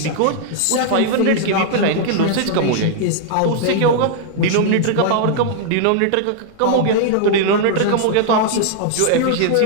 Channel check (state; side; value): different; both; correlation -0.01